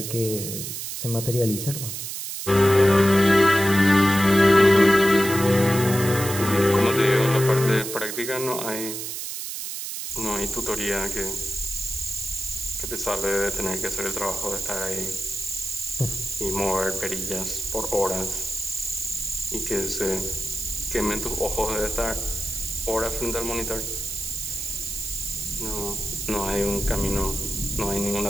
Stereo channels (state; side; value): noise; right; hiss, 6 dB below the sound